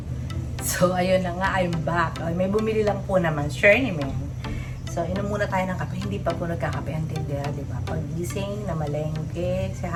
So, ayun na nga, I'm back. May bumili lang po naman, sure naman. So, inom muna tayo ng kape. Hindi pa po nagkakape ang tindera, di ba? Pag-gising, namalengke, si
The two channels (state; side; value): identical; both; correlation 1.00